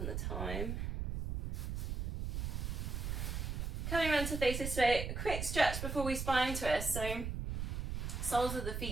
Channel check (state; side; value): noise; right; rumble, 3 dB below the sound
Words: the time. Coming around to face this way, a quick stretch before we spine twist. So soles of the